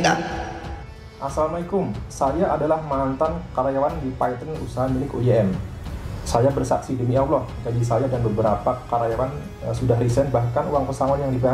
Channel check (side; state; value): both; identical; correlation 1.00